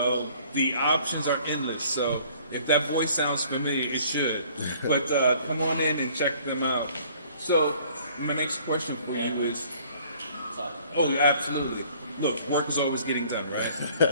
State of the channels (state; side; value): inverted; both; correlation -0.55